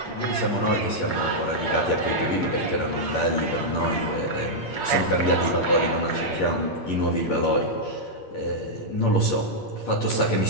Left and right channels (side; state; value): right; late; 8.6 ms